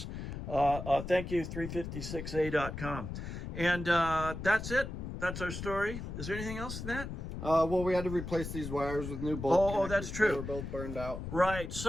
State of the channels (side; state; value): left; noise; rumble, 7 dB below the sound